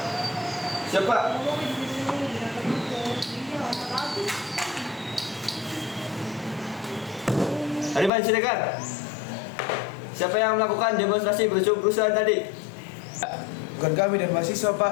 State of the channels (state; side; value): drops out; right; at 8.1 s